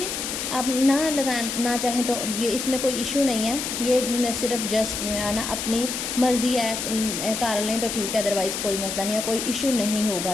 आप ना चाहें तो ये इसमें कोई इशू नहीं है, ये सिर्फ जस्ट है ना अपनी मर्ज़ी है, कर लें तो ठीक है, अदरवाइज़ कोई मसला नहीं है, कोई इशू नहीं होगा,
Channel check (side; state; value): left; noise; hiss, 4 dB below the sound